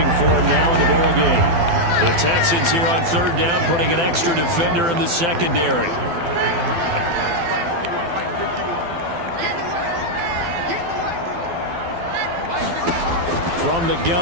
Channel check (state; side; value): late; left; 12 ms